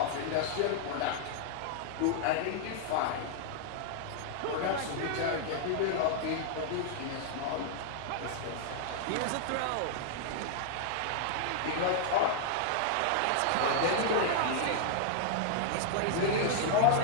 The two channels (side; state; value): both; different; correlation 0.00